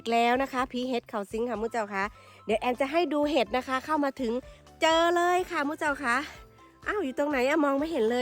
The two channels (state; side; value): identical; both; correlation 1.00